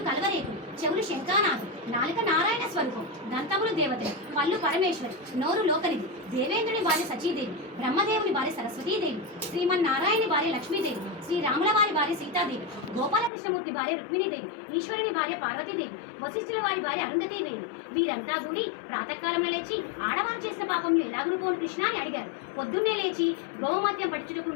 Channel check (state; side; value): drops out; right; at 13.3 s